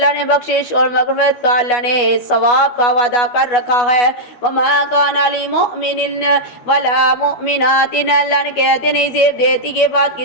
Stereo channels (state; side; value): late; right; 12 ms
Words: نے بخشش اور مغفرت کا، اللہ نے ثواب کا وعدہ کر رکھا ہے. وما کان لمؤمن ولا مؤمنات، اللہ نے کہتے نہیں زیب دیتی کے بعد